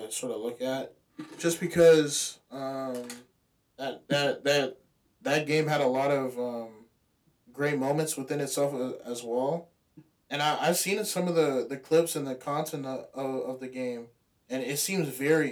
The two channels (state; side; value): identical; both; correlation 1.00